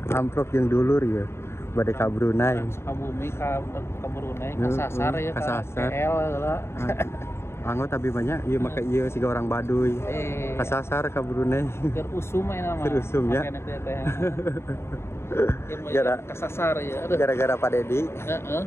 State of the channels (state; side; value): late; right; 0.12 ms